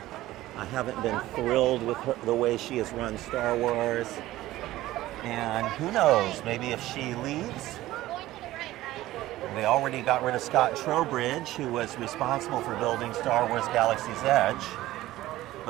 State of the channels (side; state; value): left; quieter; 16.0 dB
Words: I haven't been thrilled with her, the way she has run Star Wars. And who knows, maybe if she leaves, well, they already got rid of Scott Trowbridge, who was responsible for building Star Wars Galaxy's Edge.